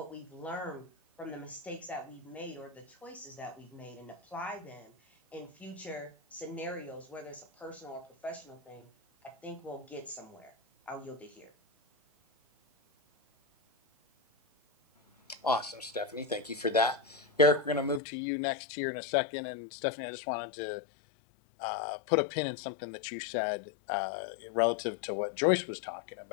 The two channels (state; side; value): drops out; right; at 18.0 s